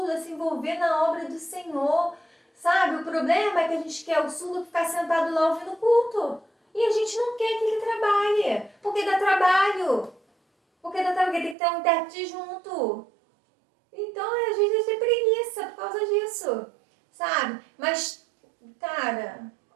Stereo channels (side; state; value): left; drops out; at 11.6 s